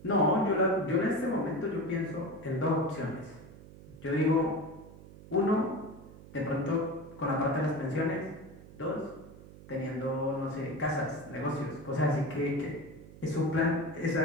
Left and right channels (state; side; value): noise; right; hum, 18 dB below the sound